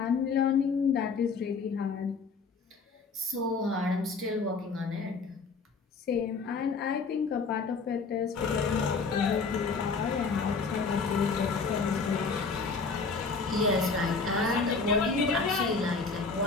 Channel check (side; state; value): right; quieter; 4.6 dB